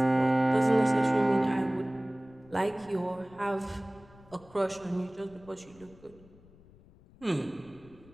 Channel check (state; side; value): noise; left; rumble, 25 dB below the sound